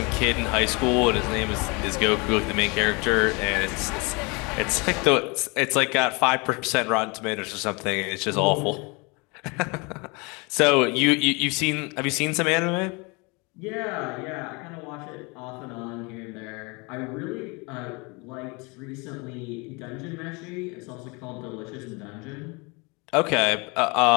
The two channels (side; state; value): right; quieter; 28.8 dB